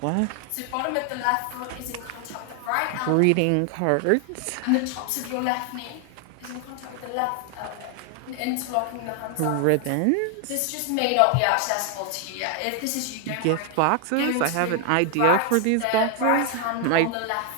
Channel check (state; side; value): different; both; correlation 0.00